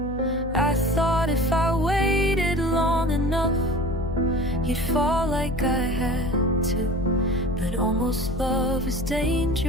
I thought if I waited long enough, you'd fall like I had to. But almost love is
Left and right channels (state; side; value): noise; left; hum, 8 dB below the sound